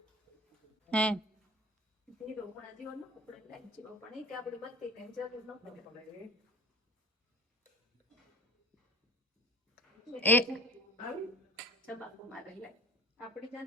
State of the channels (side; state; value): both; normal; correlation 0.42